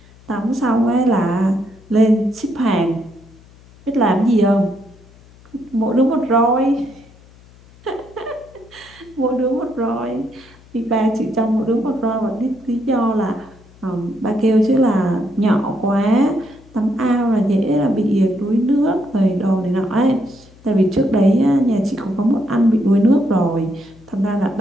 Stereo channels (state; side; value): noise; left; hum, 25 dB below the sound